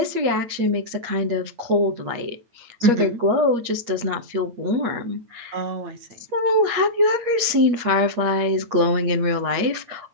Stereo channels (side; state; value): left; late; 8.4 ms